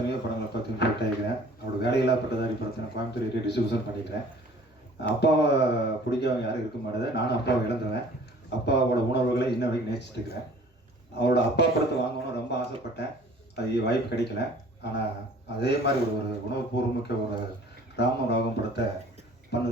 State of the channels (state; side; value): normal; both; correlation 0.50